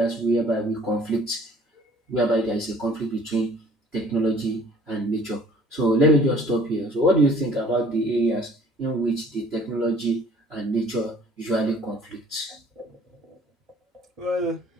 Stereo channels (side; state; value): both; normal; correlation 0.54